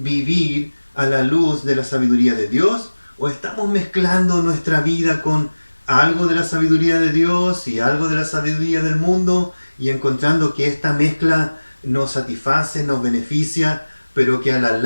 a la luz de la sabiduría de Dios, o estamos mezclando nuestra vida con algo de la sabiduría de Dios y algo de la sabiduría del mundo y encontrando que esta mezcla nos satisface, nos beneficia, pero que a la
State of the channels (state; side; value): inverted; both; correlation -1.00